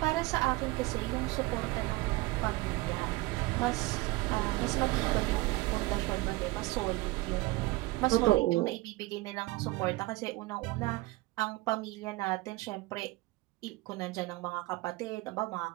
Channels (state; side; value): quieter; left; 20.7 dB